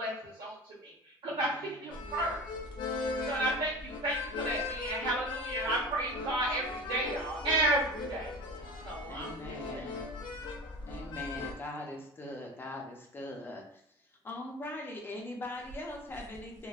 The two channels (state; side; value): normal; both; correlation 0.33